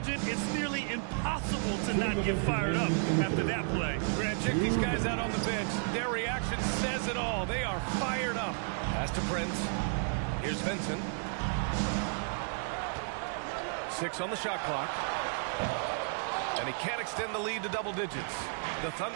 it's nearly impossible to not get fired up after that play. Grant, check these guys out on the bench. Their reaction says it all. They are fired up. Pass to Prince. Here's Vincent. 6 on the shot clock. And he can't extend the lead to double digits. The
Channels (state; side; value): silent; left; 56 dB below the other